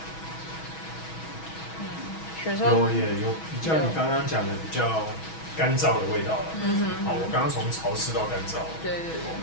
有比较你刚刚讲的比较干燥的味道了。我刚刚从潮湿到干燥。对，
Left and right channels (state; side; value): late; right; 6.2 ms